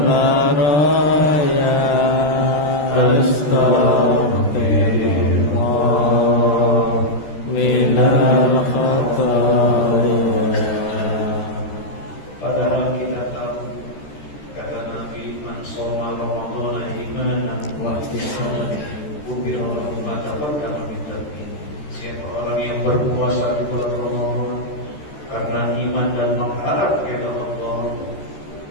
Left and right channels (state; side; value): late; right; 13 ms